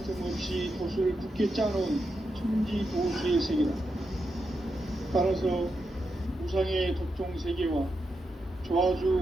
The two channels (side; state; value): both; normal; correlation 0.86